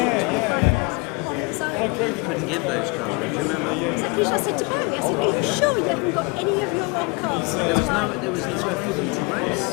You couldn't give those cars, do you remember? Exactly, I said to Barry, I said, are you sure you haven't got any of your own cars? There was nowhere for them to race.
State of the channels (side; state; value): right; quieter; 28.0 dB